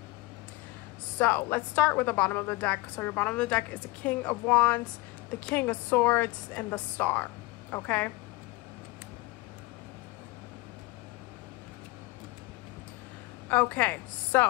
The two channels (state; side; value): quieter; right; 22.3 dB